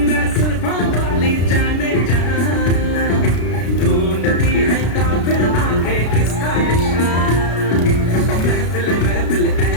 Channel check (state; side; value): late; right; 33 ms